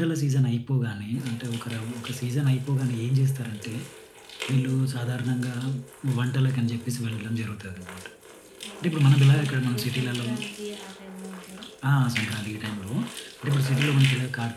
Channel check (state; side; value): identical; both; correlation 1.00